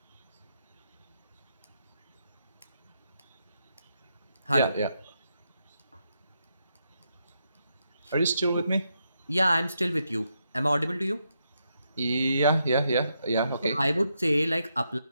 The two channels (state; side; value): inverted; both; correlation -0.81